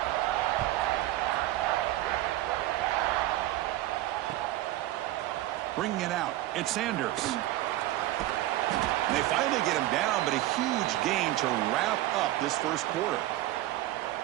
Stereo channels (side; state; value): left; quieter; 15.7 dB